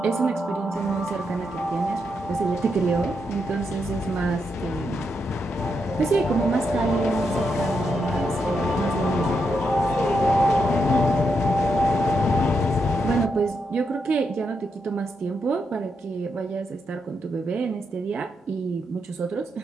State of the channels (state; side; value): normal; both; correlation 0.82